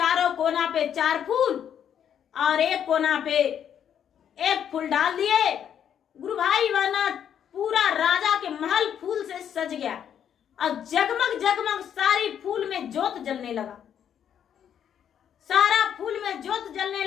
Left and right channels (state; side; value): quieter; right; 9.0 dB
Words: कोना पे 4 फूल और एक कोना पे 1 फूल डाल दिए। गुरु भाई बहना पूरा राजा के महल फूल से सज गया और जगमग जगमग सारी फूल में जोत जलने लगा, सारा फूल में जोत जलने